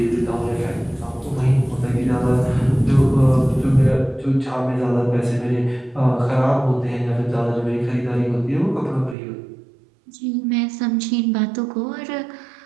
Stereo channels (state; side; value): drops out; left; at 9.2 s